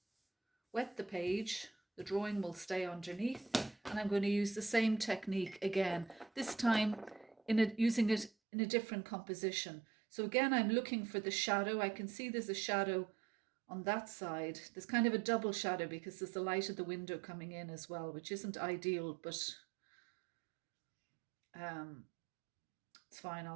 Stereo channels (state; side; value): drops out; left; at 8.3 s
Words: wet the page. The drawing will stay underneath, and I'm going to use the same technique again, this time using it in a different composition. So again, I'm looking for the shadow. I can see there's a shadow on that side. There's kind of a double shadow because there's the light of the window coming in as well, which isn't ideal, but it's it's fine.